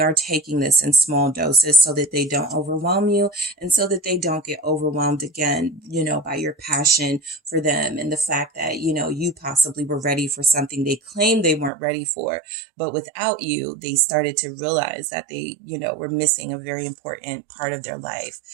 taking this in small doses so that they don't overwhelm you, and so that they don't get overwhelmed again, by your passion for them and the fact that, you possibly were ready for something they claimed they weren't ready for, but without you, they started to realize that they, were missing a very important part of their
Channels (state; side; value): drops out; left; at 11.7 s